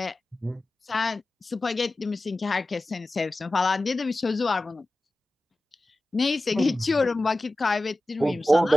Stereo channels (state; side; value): normal; both; correlation 0.95